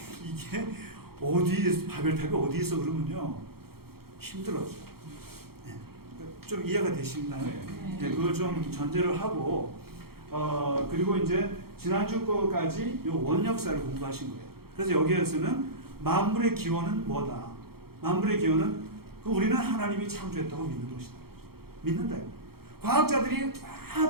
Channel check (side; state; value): left; late; 0.95 ms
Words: 이게 바벨탑이 어디 있어 그러면요, 힘들어져. 네. 좀 이해가 되시나요? 네. 그걸 좀 전제를 하고, 그리고 이제 지난주 거까지 요 원역사를 공부하신 거예요. 그래서 여기에서는 만물의 기원은 뭐다? 만물의 기원은 우리는 하나님이 창조했다고 믿는 것이다. 믿는다. 과학자들이